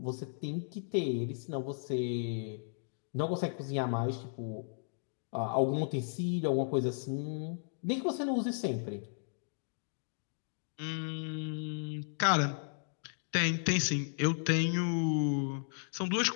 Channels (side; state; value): right; silent; digital silence